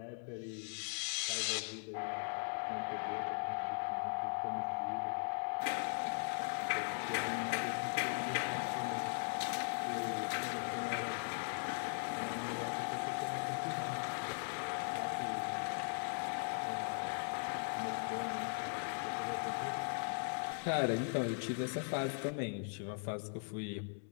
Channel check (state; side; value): silent; right; 51 dB below the other